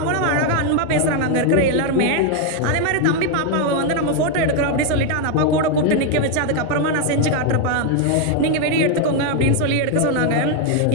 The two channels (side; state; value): both; different; correlation 0.01